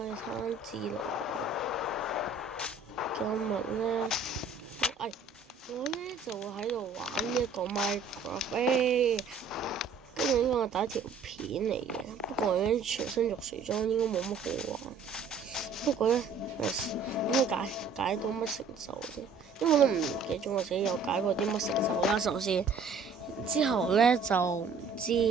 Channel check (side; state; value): left; quieter; 4.6 dB